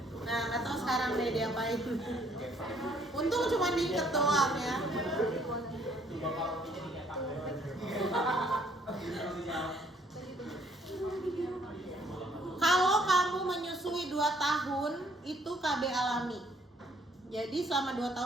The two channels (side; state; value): both; normal; correlation 0.64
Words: Nah, nggak tahu sekarang deh dia apain. Untung cuma diikat doang ya. Kalau kamu menyusui 2 tahun itu KB alami. Jadi selama 2